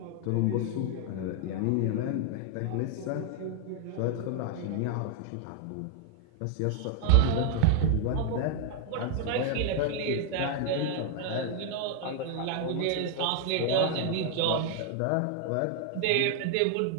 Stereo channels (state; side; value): different; both; correlation 0.00